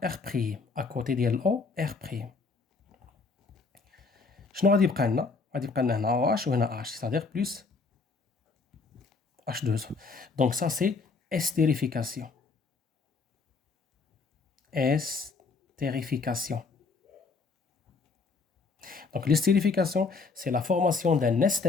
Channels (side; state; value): right; quieter; 4.4 dB